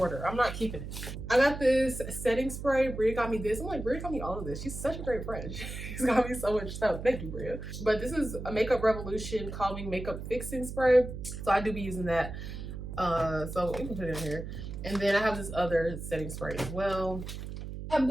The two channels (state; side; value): noise; right; hum, 8 dB below the sound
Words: I'm not keeping it. I got this setting spray. Bria got me this. I'm like, Bria got me all of this. She's such a great friend. She's got me so much stuff. Thank you, Bria. But this is a Makeup Revolution Calming Makeup Fixing Spray. So I do be using that. So you can put it in here. And then I have this other setting spray as well. I have